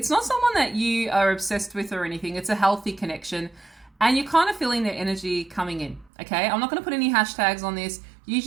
not someone that you are obsessed with or anything. It's a healthy connection, and you're kind of feeling their energy coming in, okay? I'm not going to put any hashtags on this. Use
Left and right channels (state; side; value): drops out; left; at 6.1 s